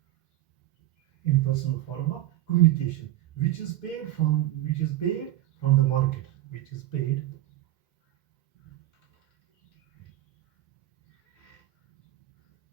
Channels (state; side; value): quieter; left; 14.9 dB